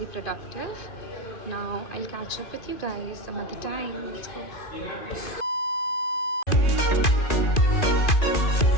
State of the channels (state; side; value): late; right; 2.5 ms